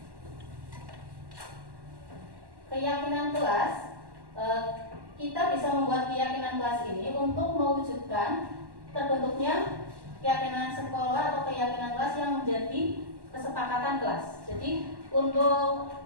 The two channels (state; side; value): late; left; 1.1 ms